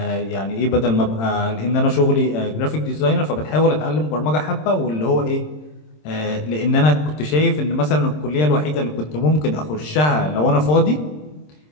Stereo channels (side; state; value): right; late; 26 ms